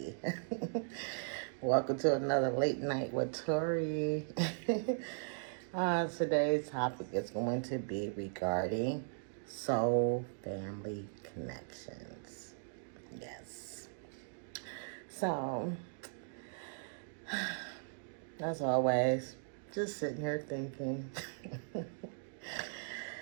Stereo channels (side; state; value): left; silent; digital silence